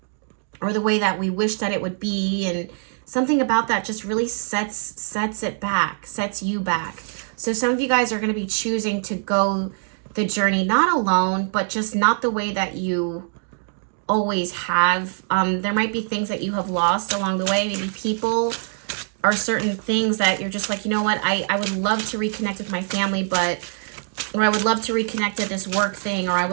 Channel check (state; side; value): silent; left; 59 dB below the other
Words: or the way that we wish that it would be, and something about that just really sets it back, sets you back. So some of you guys are going to be choosing to go the journey, not alone, but just not the way that you always have. There might be things that you have lost along the way, maybe people or certain things that you're just like, you know what, I would love to reconnect with my family, or I would love to reconnect at this work thing, or I